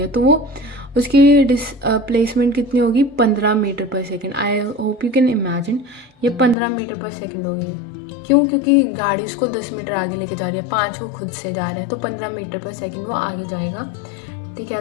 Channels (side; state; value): right; drops out; at 6.6 s